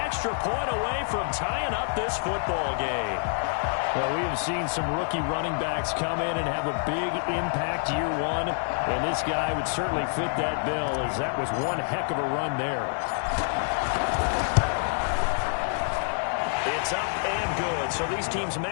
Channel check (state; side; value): silent; right; 59 dB below the other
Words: point away from tying up this football game. Well, we have seen some rookie running backs come in and have a big impact year one, and this guy would certainly fit that bill, as that was one heck of a run there. It's up and good. So these teams